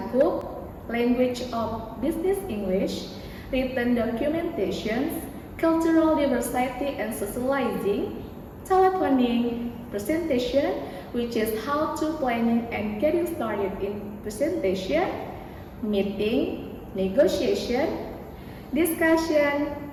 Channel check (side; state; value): both; identical; correlation 1.00